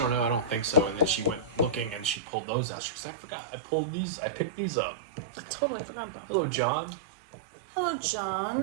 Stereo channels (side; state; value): left; drops out; at 2.2 s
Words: don't know, I don't think so. And then she went looking and she pulled those out. She said, I forgot, I picked these up. I totally forgot about them. Hello, John. Hello,